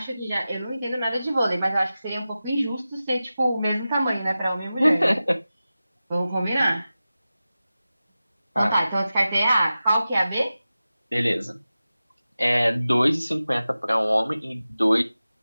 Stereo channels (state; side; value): inverted; both; correlation -0.95